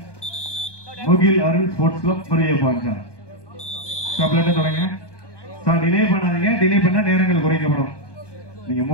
முகில் அருள் ஸ்போர்ட்ஸ் கிளப் முருகப்பாஞ்சா. தொடங்க சார், டிலே பண்ணாதீங்க. டிலே பண்ணா நேரங்கள் குறைக்கப்படும். நீங்க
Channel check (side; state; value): right; late; 1.2 ms